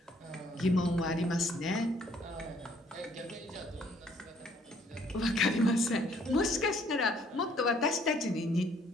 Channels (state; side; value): normal; both; correlation 0.63